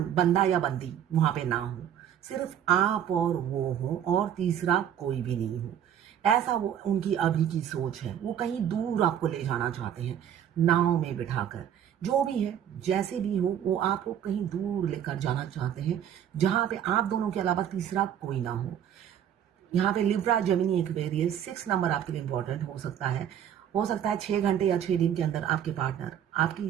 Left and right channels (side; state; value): left; quieter; 9.6 dB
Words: बंदा या बंदी वहां पे ना हो, सिर्फ आप और वो हो और तीसरा कोई भी नहीं हो। ऐसा वो उनकी अभी की सोच है। वो कहीं दूर आपको ले जाना चाहते हैं, नाव में बिठाकर। जो भी है, जैसे भी हो, वो आपको कहीं दूर लेकर जाना चाहते हैं, जहां पे आप दोनों के अलावा तीसरा कोई ना हो। यहाँ पे लिब्रा, जेमिनी, एक्वेरियस 6 नंबर आपके लिए इंपॉर्टेंट हो सकता है 6 घंटे या 6 दिन के अंदर आपके पार्टनर